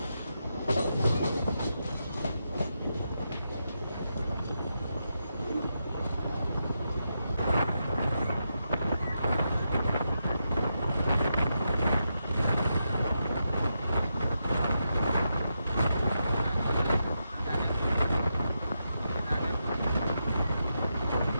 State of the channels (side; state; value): both; inverted; correlation -0.85